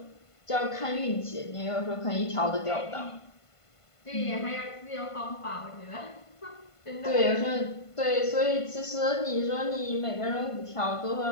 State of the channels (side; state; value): right; late; 1.5 ms